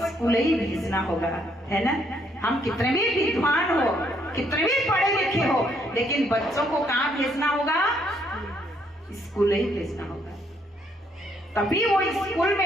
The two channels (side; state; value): both; normal; correlation 0.70